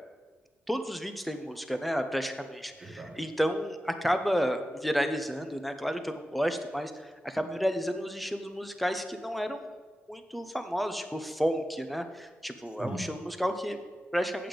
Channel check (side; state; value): both; normal; correlation 0.93